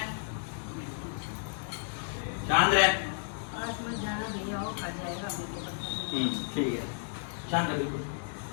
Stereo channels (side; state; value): right; silent; digital silence